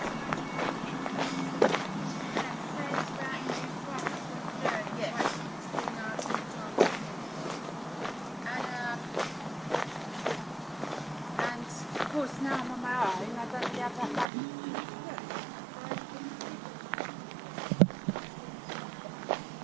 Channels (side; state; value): left; drops out; at 14.3 s